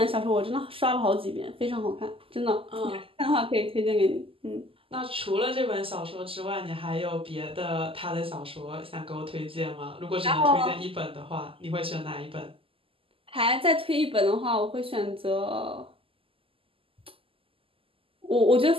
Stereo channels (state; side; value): late; left; 0.26 ms